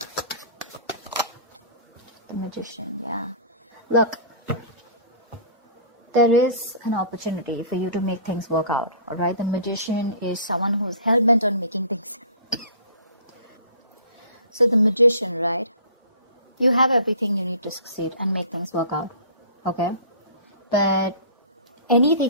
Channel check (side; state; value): both; inverted; correlation -0.44